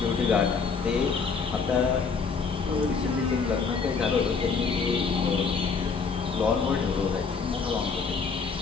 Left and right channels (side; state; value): right; quieter; 5.3 dB